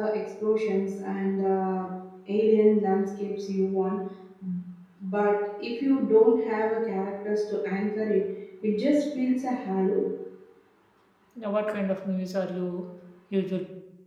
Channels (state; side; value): identical; both; correlation 1.00